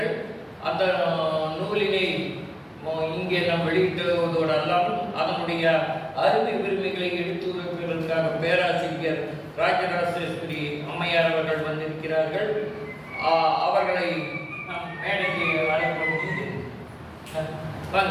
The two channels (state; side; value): identical; both; correlation 1.00